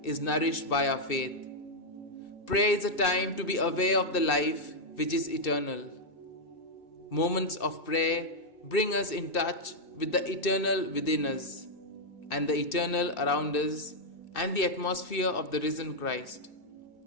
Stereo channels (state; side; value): late; right; 2.6 ms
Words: is nourished by our faith. Prayer is a time to be aware of the life which is eternal. Moments of prayer bring us in touch with the eternal within us and the eternal around us and the atmosphere of the risen Christ.